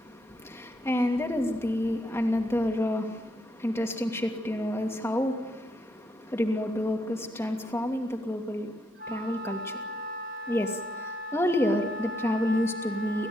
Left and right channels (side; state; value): both; normal; correlation 0.77